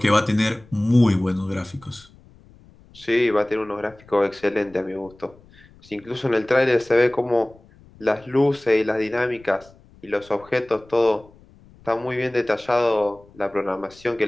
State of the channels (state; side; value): noise; left; rumble, 26 dB below the sound